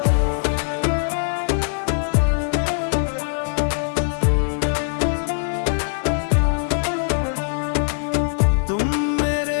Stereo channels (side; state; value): right; silent; 65 dB below the other